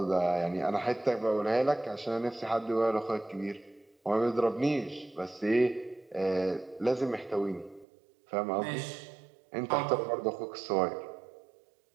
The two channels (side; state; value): left; drops out; at 7.9 s